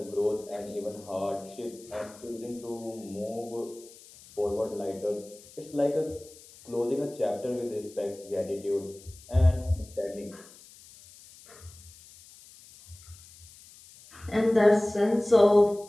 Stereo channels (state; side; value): noise; left; hiss, 21 dB below the sound